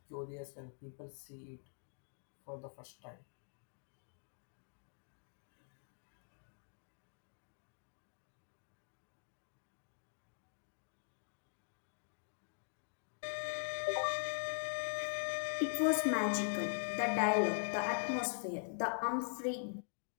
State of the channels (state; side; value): silent; right; digital silence